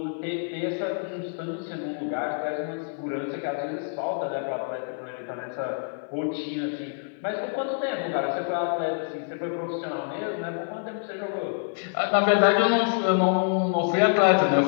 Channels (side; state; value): right; silent; 59 dB below the other